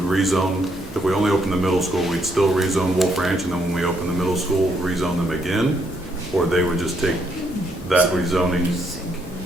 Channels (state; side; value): normal; both; correlation 0.73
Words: rezone, if we only open the middle school, we'd still rezone Wolf Ranch, and then when we open the middle school, rezone them again? Or they would just take that rezoning?